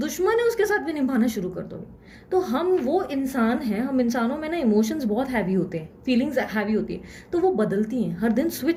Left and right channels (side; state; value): both; identical; correlation 1.00